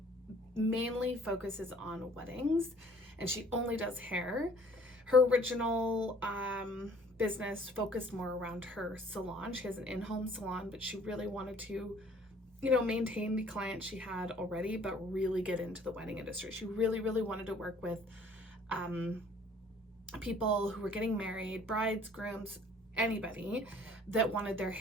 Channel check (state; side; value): normal; both; correlation 0.55